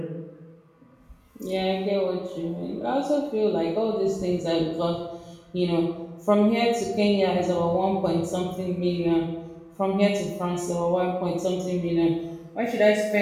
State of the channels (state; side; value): identical; both; correlation 1.00